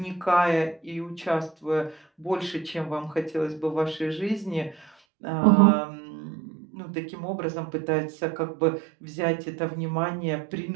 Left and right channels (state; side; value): drops out; left; at 4.9 s